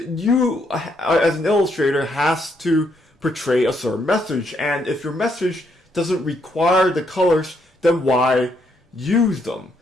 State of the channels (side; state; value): both; normal; correlation 0.75